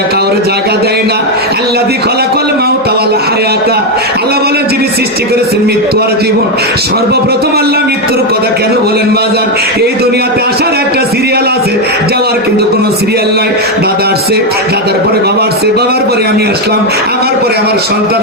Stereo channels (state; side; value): normal; both; correlation 0.06